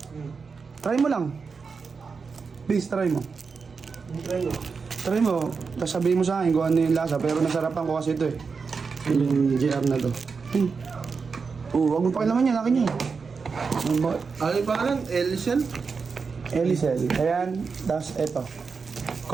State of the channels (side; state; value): left; quieter; 5.1 dB